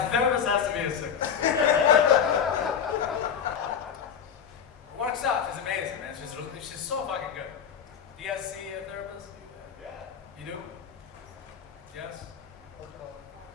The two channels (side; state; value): right; quieter; 7.7 dB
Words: therapist has to be a 6. Works out. She's amazing, man. She's so fucking good. Do you guys see a therapist? Yeah. You do? Yes?